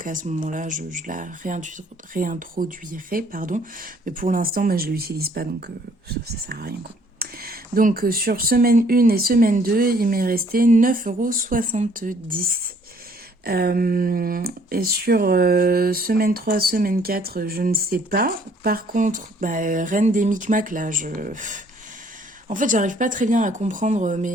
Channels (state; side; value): normal; both; correlation 0.62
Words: à ce moment-là, je la réintroduirai, pardon. Mais pour l'instant, je ne l'utilise pas, donc ça sert à rien, quoi. Donc sur semaine 1 et semaine 2, il m'est resté 9,70 €. Et sur semaine 3, semaine 4, je ne sais pas. Par contre, reine des micmacs, là, en fait, j'arrive pas très bien à comprendre